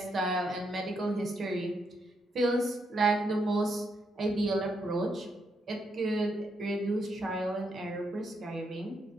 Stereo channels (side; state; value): both; normal; correlation 0.78